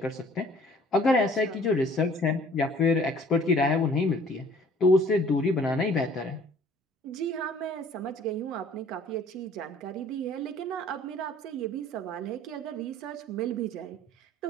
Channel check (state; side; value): normal; both; correlation 0.54